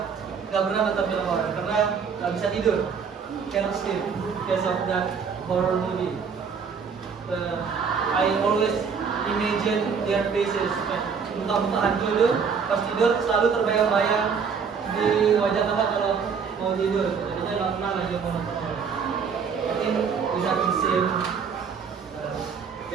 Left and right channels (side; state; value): left; quieter; 6.1 dB